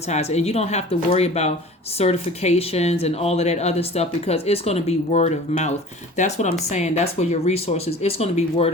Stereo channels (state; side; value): normal; both; correlation 0.42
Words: it. And you don't have to worry about certifications and all of that other stuff, because it's going to be word of mouth. That's what I'm saying. That's where your resources, it's going to be word